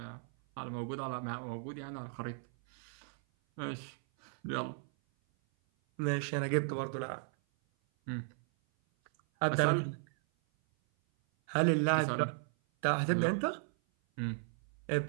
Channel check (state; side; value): silent; left; 54 dB below the other